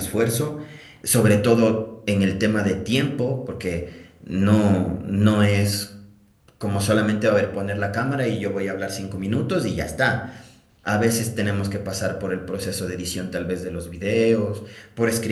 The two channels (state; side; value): identical; both; correlation 1.00